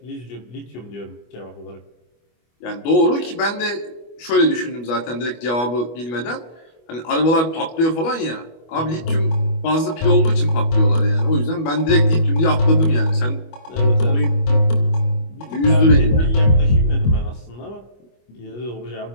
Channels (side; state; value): right; late; 25 ms